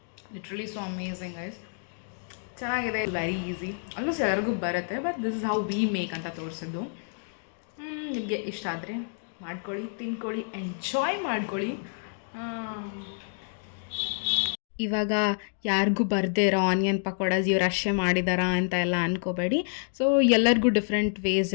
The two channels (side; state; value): right; silent; 59 dB below the other